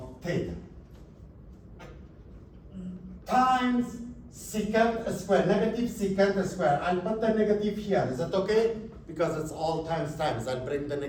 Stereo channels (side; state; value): both; identical; correlation 1.00